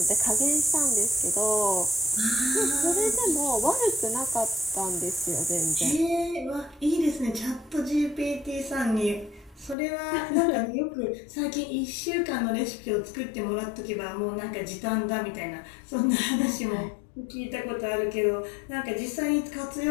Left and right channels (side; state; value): right; drops out; at 9.8 s